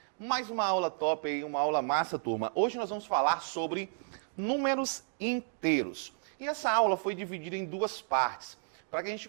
Mais uma aula top aí, uma aula massa, turma. Hoje nós vamos falar sobre números inteiros. E essa aula foi dividida em duas partes, para que a gente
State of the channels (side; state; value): left; silent; digital silence